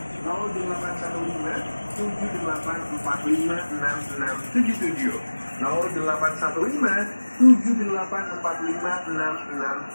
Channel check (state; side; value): inverted; both; correlation -1.00